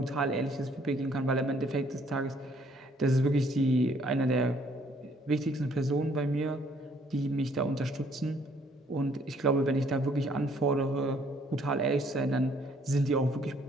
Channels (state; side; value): normal; both; correlation 0.64